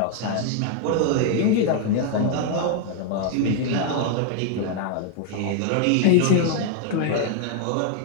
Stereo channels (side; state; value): both; different; correlation 0.00